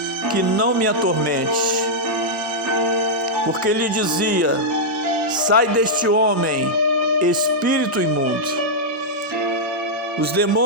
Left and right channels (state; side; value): normal; both; correlation -0.07